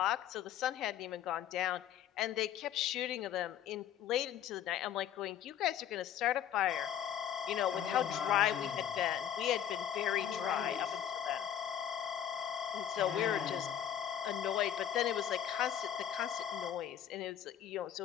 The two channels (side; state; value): right; quieter; 10.0 dB